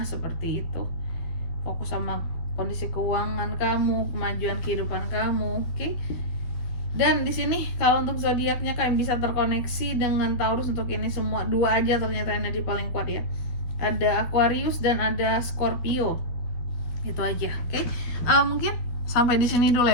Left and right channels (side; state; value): right; late; 12 ms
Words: seperti itu. Fokus sama kondisi keuangan kamu, kemajuan kehidupan kamu, oke? Dan di sini kalau untuk zodiaknya kalian bisa terkoneksi dengan Taurus untuk ini semua. 2 aja ternyata energi paling kuat ya. Ada Aquarius dan ada Scorpio. Itu aja, oke? Mungkin sampai di sini dulu